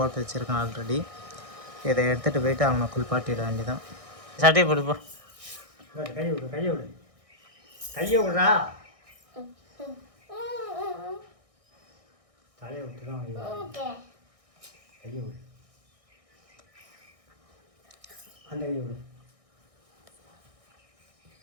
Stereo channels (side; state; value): left; late; 1.6 ms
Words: வச்சுருக்கான் ஆல்ரெடி. இதை எடுத்துகிட்டு போயிட்டு அவனை குளிப்பாட்டிட வேண்டியதான். சட்டையை போடுப்போ. கையை விடு, கையை விடு, கையை விடுறா. தலையை விட்டு தான் கையை விடு, அந்த கையை விடு.